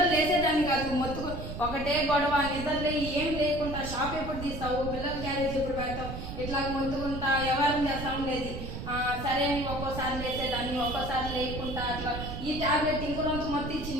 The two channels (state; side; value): noise; right; rumble, 7 dB below the sound